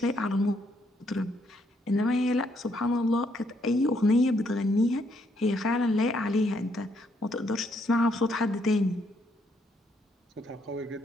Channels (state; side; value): normal; both; correlation 0.73